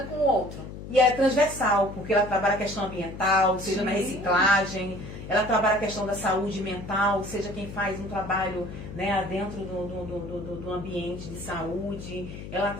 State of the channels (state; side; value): noise; left; hum, 11 dB below the sound